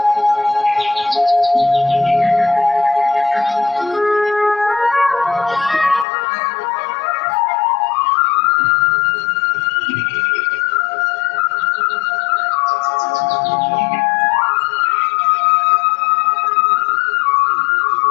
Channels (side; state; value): right; drops out; at 6.1 s